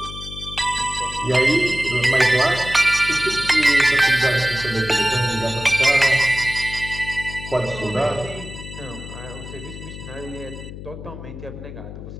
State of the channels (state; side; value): noise; left; hum, 12 dB below the sound